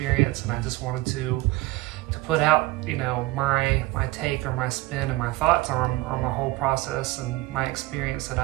and I just wanted to put out, my take or my spin and my thoughts on my whole process and my experience that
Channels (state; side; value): quieter; left; 19.5 dB